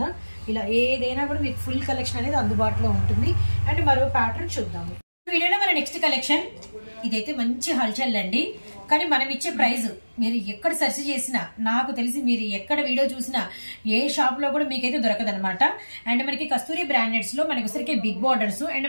ఇలా ఏదైనా కూడా మీకు ఫుల్ కలెక్షన్ అనేది అందుబాటులో ఉంటుంది అండ్ మరో ప్యాటర్న్ చూద్దాము వీడియోలో మన నెక్స్ట్ కలెక్షన్ ఇదైతే మంచి హల్చల్ అండి కానీ మనం ఇచ్చే ప్రైస్ మీరు ఎక్కడ సెర్చ్ చేసినా నాకు తెలిసి మీరు ఎక్కడ వీడియో చూసినా ఏ షాప్ లో కూడా మీకైతే దొరకదనమాట అండ్ మనకి కస్తూరి బ్రాండెడ్స్ లో మనకి వచ్చరికి బిగ్ బార్డర్స్ అండ్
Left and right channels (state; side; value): inverted; both; correlation -1.00